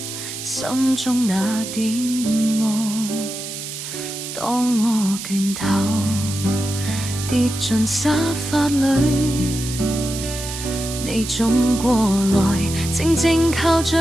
心中那點望。當我倦透跌進沙發裏，你總過來靜靜靠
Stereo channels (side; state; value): right; noise; hiss, 8 dB below the sound